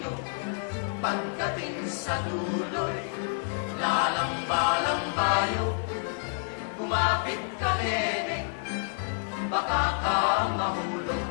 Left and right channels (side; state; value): right; silent; 59 dB below the other